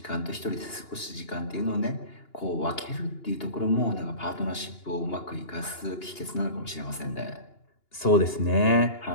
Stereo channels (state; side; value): late; right; 2.8 ms